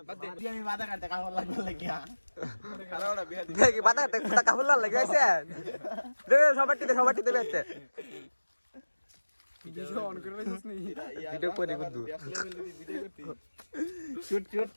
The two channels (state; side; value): inverted; both; correlation -1.00